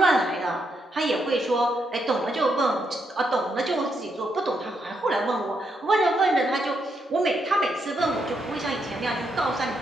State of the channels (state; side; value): normal; both; correlation 0.79